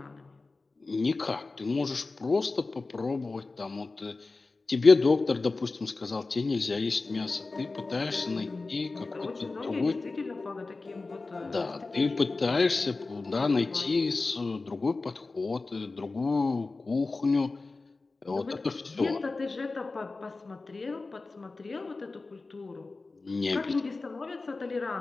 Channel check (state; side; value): quieter; right; 3.6 dB